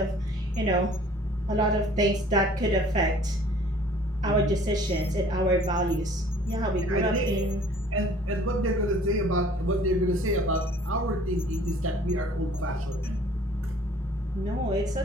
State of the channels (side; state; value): both; normal; correlation 0.53